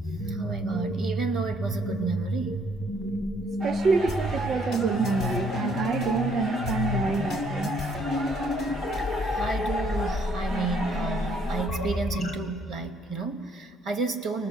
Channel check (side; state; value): both; normal; correlation 0.67